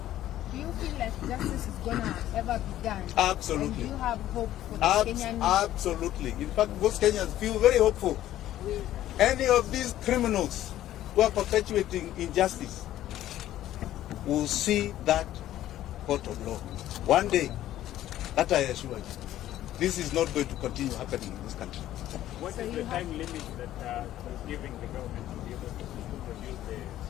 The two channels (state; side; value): quieter; right; 13.2 dB